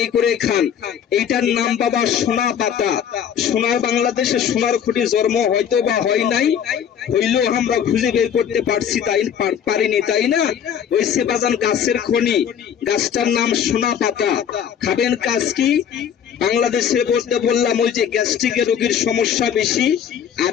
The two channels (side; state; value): right; quieter; 8.6 dB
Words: করে খান। এইটার নাম বাবা সোনা পাতা। সোনার বাংলাদেশে সোনার খুঁটি জন্ম হয়তো বা হয় নাই, হইলেও আমরা খুঁজে বের করতে পারছি, পারিনি, তাই না? ওই সে বাজান গাছের খনি, গাছটার নাম সোনা পাতা। খাবেন কাজ কি? বাংলাদেশে বলতে বললাম ওই যে গ্যাস্ট্রিকের রোগীর সমস্যা বেশি, আর